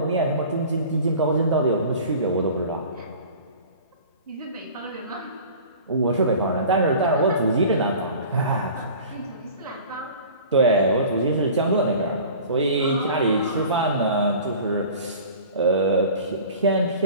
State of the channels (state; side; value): inverted; both; correlation -0.42